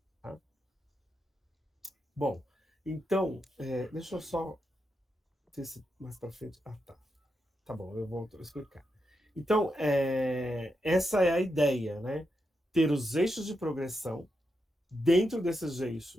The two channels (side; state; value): both; normal; correlation 0.85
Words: Tá? Bom, então, deixa eu só ver se mais para frente... tá. Tá bom, eu vou explicar. Então, essa é a ideia, né? Ter os eixos de progressão, dentro desses